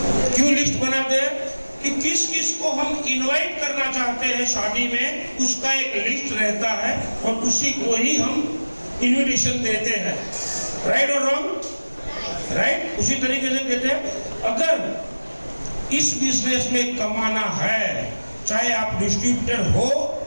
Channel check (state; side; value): inverted; both; correlation -1.00